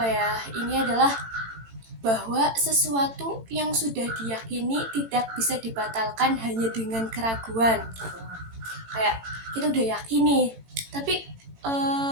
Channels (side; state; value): left; late; 18 ms